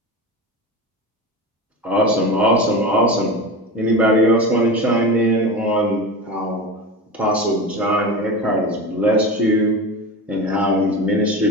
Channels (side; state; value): both; normal; correlation 0.26